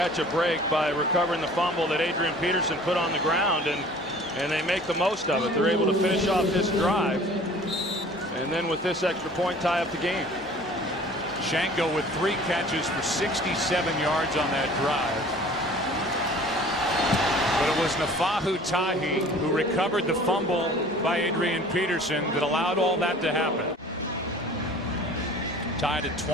a break by recovering the fumble that Adrian Peterson put on the ground, and they make the most of it. They're able to finish off this drive, and then with this extra point, tie up the game. Shenko with 3 catches for 67 yards on that drive. But it was Nafahu Tahi who recovered the fumble by Adrian Peterson that allowed all that to happen. Tied at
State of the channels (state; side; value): normal; both; correlation 0.48